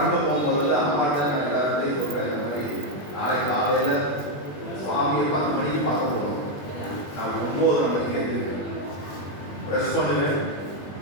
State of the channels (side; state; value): right; late; 21 ms